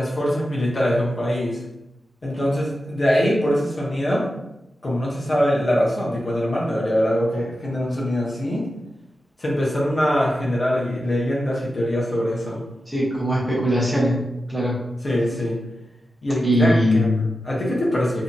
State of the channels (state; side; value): normal; both; correlation 0.91